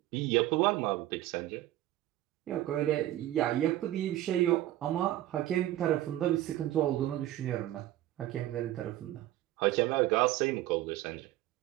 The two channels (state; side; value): quieter; left; 14.6 dB